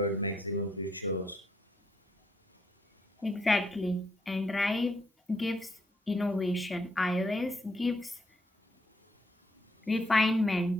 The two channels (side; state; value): both; normal; correlation 0.74